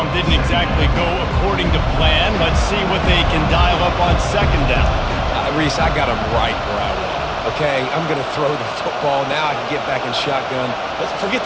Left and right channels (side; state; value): both; identical; correlation 1.00